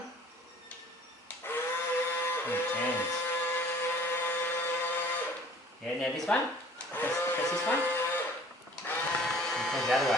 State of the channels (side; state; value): both; normal; correlation 0.51